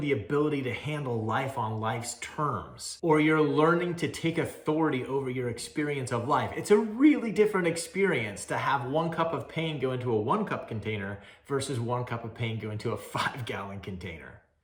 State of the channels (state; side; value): identical; both; correlation 1.00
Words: the ability to handle life on life's terms, or you're learning to take authority over your experience of life. It's a really different experience to have 1 cup of pain go into a 1-cup container versus 1 cup of pain go into a 5-gallon container.